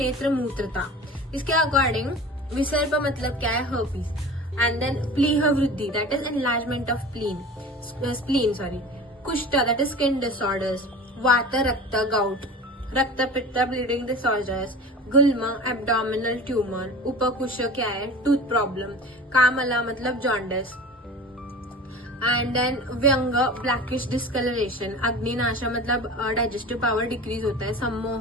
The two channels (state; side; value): normal; both; correlation 0.36